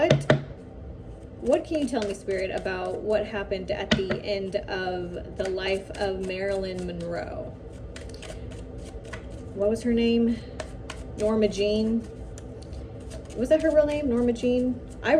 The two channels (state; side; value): identical; both; correlation 1.00